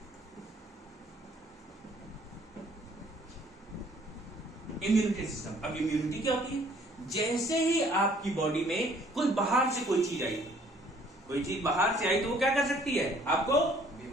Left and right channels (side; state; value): both; normal; correlation 0.59